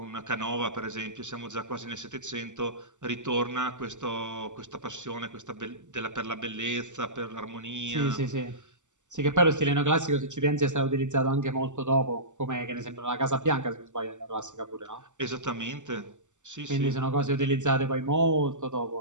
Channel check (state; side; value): late; left; 0.85 ms